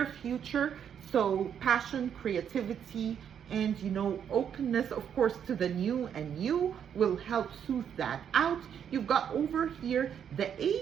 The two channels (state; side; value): quieter; left; 8.4 dB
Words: future. So passion, creativity, and openness, of course, to the new and you will help soothe that out. You've got over here the